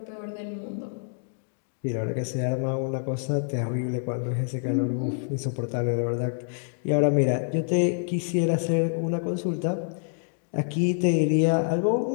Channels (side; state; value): right; silent; digital silence